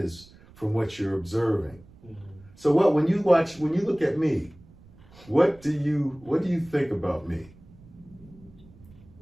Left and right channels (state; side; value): noise; right; rumble, 24 dB below the sound